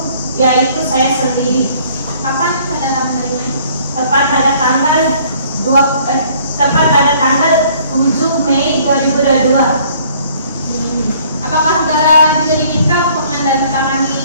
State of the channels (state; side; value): inverted; both; correlation -0.58